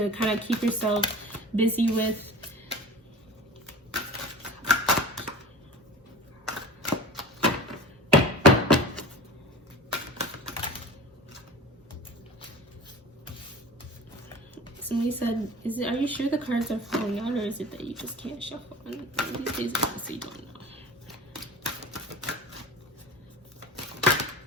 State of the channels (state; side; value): normal; both; correlation 0.36